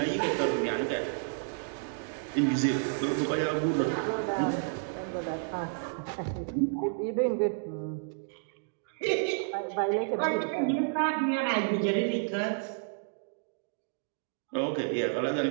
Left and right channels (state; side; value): silent; left; digital silence